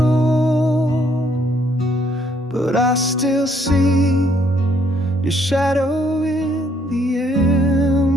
but I still see your shadow in the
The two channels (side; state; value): both; normal; correlation 0.68